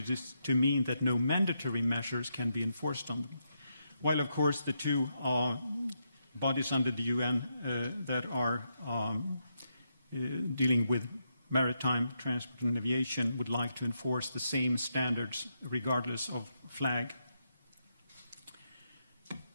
to mean that no mandatory measures can be enforced on them. While, of course, the two bodies under the UN that are dealing with maritime transport and aviation would like to enforce the same standards regardless of flag.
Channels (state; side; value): inverted; both; correlation -0.82